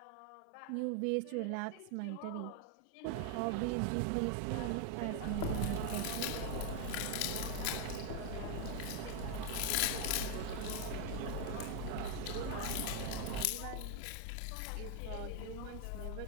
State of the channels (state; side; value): different; both; correlation 0.01